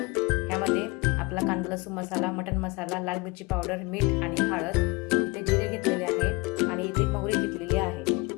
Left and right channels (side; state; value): right; quieter; 25.9 dB